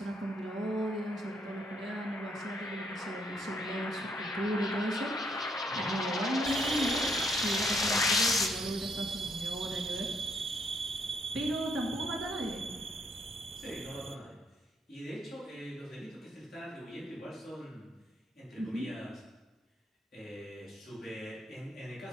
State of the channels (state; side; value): normal; both; correlation 0.71